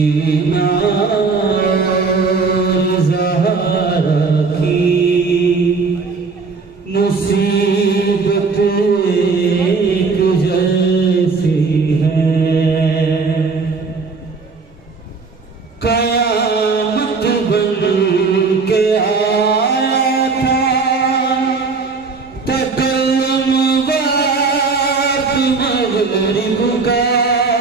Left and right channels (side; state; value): left; quieter; 4.5 dB